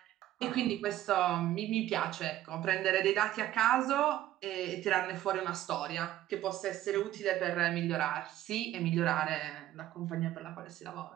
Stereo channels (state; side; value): quieter; left; 13.6 dB